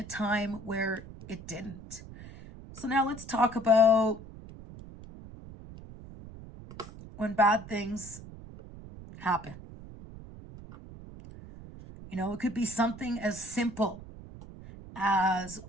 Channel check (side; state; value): right; noise; rumble, 15 dB below the sound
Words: time where it didn't. So now let's talk about when bad things happen. It could be something as simple as